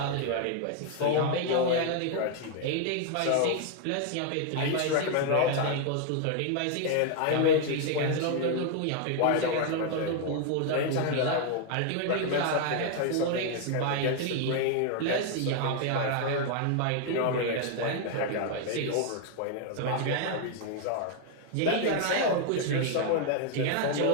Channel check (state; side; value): different; both; correlation 0.00